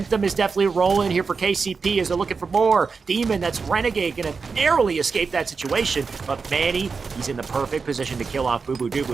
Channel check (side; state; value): left; quieter; 5.0 dB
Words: is definitely rolling here for KCP as they're looking for more. Demon, that's Renegade, gonna narrowly escape that situation, but Manny, he's in the perfect position to kill off Boo Boo Doo